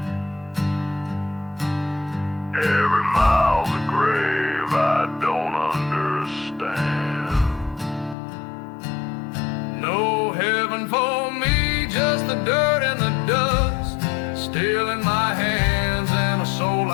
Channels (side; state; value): right; drops out; at 8.2 s